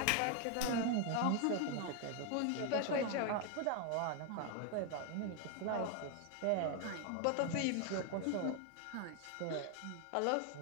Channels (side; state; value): both; different; correlation 0.01